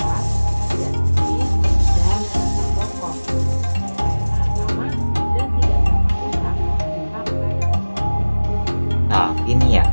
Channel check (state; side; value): inverted; both; correlation -1.00